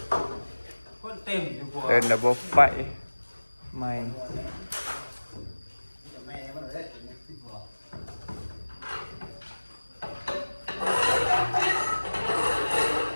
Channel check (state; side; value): inverted; both; correlation -1.00